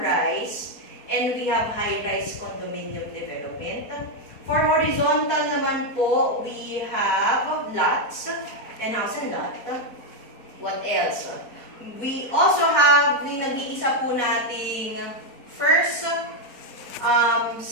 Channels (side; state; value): right; late; 4.2 ms